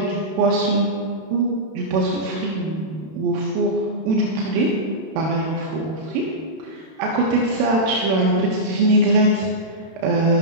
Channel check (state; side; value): late; left; 31 ms